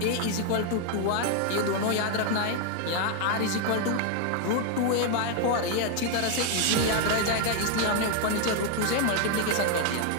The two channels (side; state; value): both; different; correlation 0.00